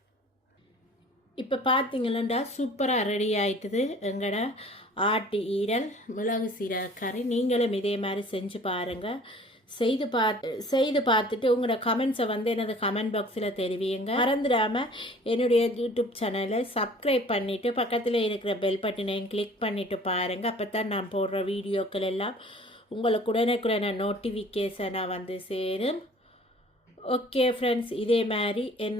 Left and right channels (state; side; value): normal; both; correlation 0.50